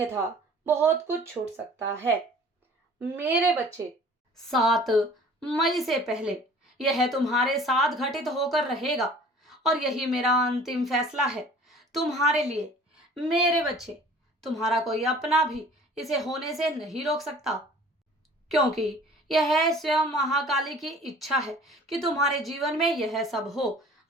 बहुत कुछ छूट सकता है। मेरे बच्चे, 7 मई से पहले यह तुम्हारे साथ घटित होकर रहेगा और यही मेरा अंतिम फैसला है तुम्हारे लिए। मेरे बच्चे, तुम्हारा कोई अपना भी इसे होने से नहीं रोक सकता, क्योंकि यह स्वयं महाकाली की इच्छा है कि तुम्हारे जीवन में यह सब हो।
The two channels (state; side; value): normal; both; correlation 0.49